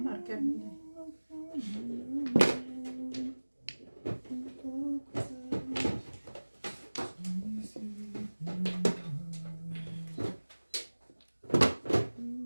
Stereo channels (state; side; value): inverted; both; correlation -1.00